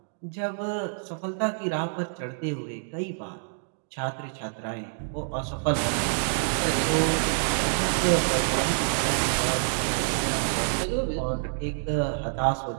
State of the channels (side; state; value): left; silent; digital silence